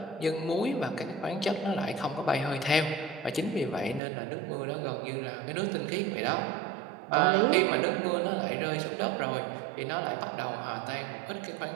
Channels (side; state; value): left; drops out; at 4.0 s